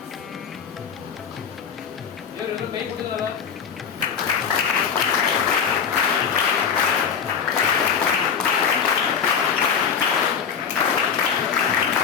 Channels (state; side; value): quieter; right; 7.2 dB